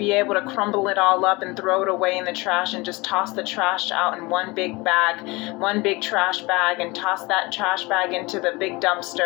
able to crumble it all up and throw it away in the trash and just toss the trash out in one big bag, one big trash bag, and toss that trash bag into the big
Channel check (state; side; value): quieter; right; 24.0 dB